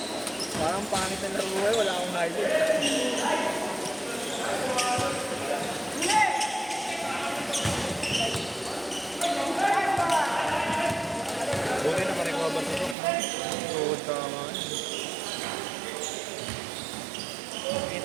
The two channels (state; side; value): drops out; left; at 13.0 s